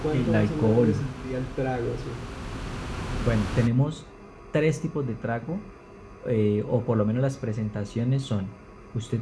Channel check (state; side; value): identical; both; correlation 1.00